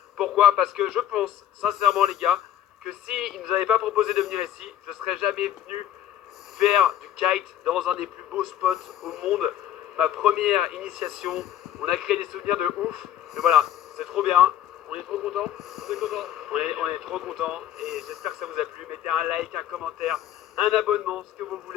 Pourquoi? Parce que je pense sincèrement les gars, que s'ils ne nous avaient pas proposé de venir ici, je ne serais jamais venu faire du kite dans un des plus beaux spots au monde. Ma première initiation, on a créé des souvenirs de ouf. Mais voilà, c'est trop bien. On est trop content. On est trop content et j'espère que ça vous a plu. Mettez un like, un commentaire, un abonnement, ce que vous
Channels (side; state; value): right; quieter; 11.3 dB